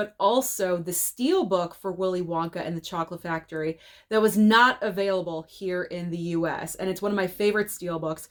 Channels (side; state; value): both; identical; correlation 1.00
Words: also the steelbook for Willy Wonka and the Chocolate Factory that was not available here in the US. And it's one of my favorite steelbooks